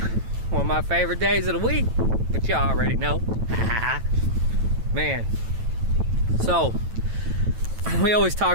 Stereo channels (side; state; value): left; late; 9.1 ms